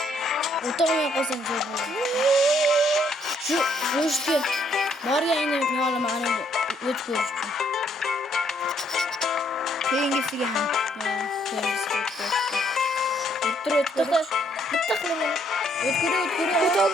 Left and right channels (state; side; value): normal; both; correlation 0.69